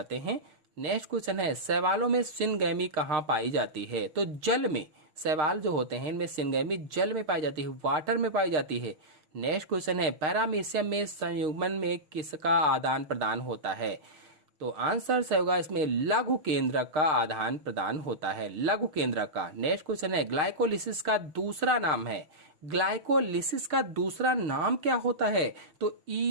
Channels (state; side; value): late; left; 6.5 ms